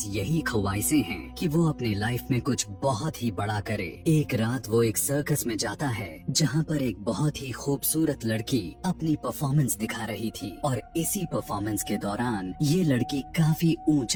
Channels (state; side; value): identical; both; correlation 1.00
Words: यही ख्वाहिशें हैं कि वो अपनी लाइफ में कुछ बहुत ही बड़ा करे। एक रात वो एक सर्कस में जाता है जहाँ पर एक बहुत ही खूबसूरत लड़की अपनी परफॉर्मेंस दिखा रही थी और इसी परफॉर्मेंस के दौरान ये लड़की काफी